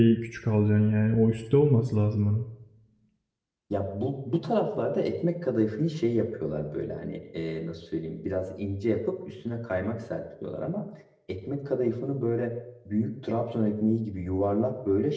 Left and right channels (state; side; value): identical; both; correlation 1.00